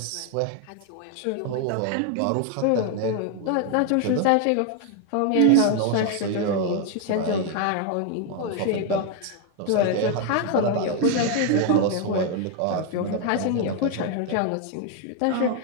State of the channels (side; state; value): both; different; correlation 0.01